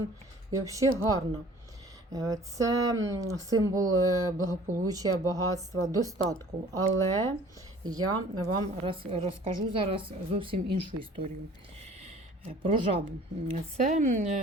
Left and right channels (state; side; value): normal; both; correlation 0.50